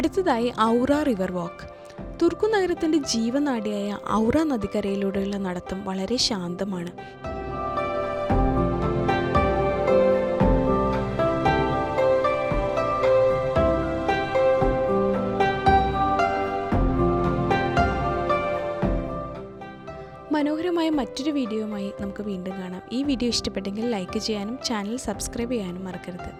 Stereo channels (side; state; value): both; identical; correlation 1.00